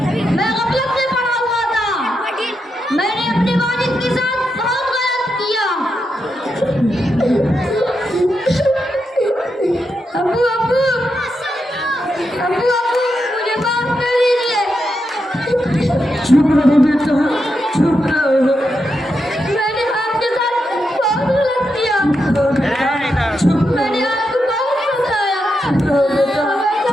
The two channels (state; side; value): normal; both; correlation 0.85